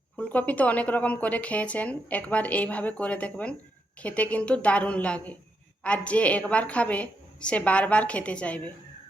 फुलकपि तो अनेक रकम करे खेयेछेन, एकबार एइभावे करे देखबेन, खेते किन्तु दारुण लागे और जे एकबार खाबे से बार बार खेते चाइबे।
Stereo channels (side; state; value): both; normal; correlation 0.81